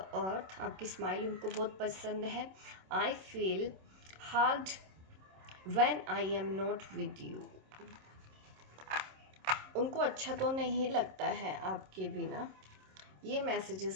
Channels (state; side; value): late; left; 26 ms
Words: आपकी स्माइल उनको बहुत पसंद है। I feel hard when I am not with you, उनको अच्छा तो नहीं लगता है आपके बिना। ये